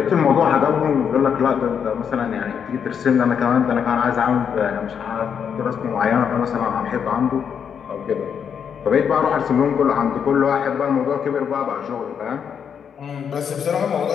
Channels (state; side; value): quieter; right; 7.5 dB